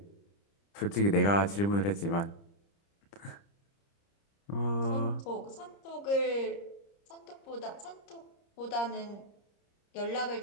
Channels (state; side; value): late; right; 30 ms